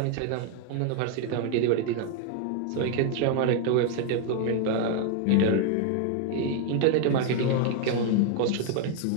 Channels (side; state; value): both; different; correlation 0.00